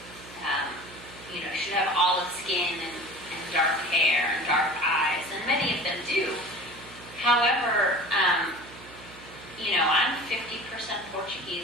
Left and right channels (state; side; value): noise; right; hum, 19 dB below the sound